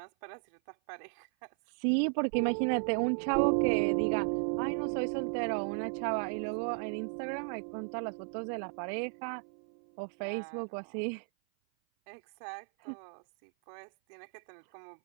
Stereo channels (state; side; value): silent; left; 55 dB below the other